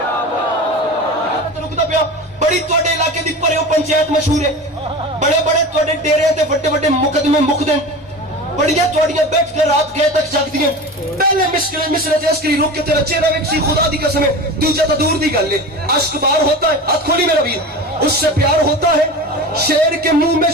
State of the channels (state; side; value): normal; both; correlation 0.31